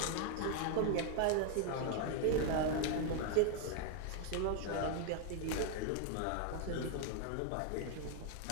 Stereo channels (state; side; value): different; both; correlation 0.00